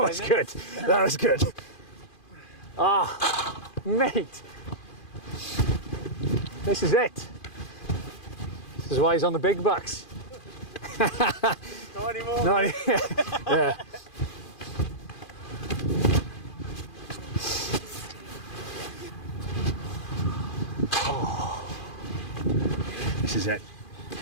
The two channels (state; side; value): late; right; 2.4 ms